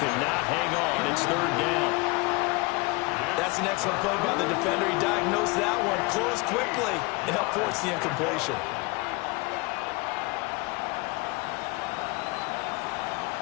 could not hang on. It's 3rd down. That's an excellent play by the defender. He diagnosed that one, closed quickly, and helped force the incompletion.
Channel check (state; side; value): quieter; right; 26.2 dB